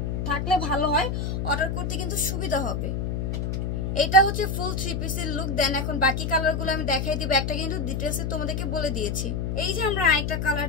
থাকলে ভালো হয়, অর্ডার করতে কিন্তু সুবিধা হবে। এটা হচ্ছে ফুল 3 পিসের লুক। দেন এখন বাকি কালারগুলো আমি দেখাই দিব, একটা কিন্তু ডিটেলসে তোমাদেরকে বলে দিয়েছি। এই যে আমরা আরেকটা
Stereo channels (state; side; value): noise; left; hum, 1 dB below the sound